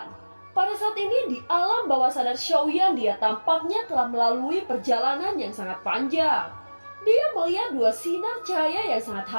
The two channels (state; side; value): inverted; both; correlation -1.00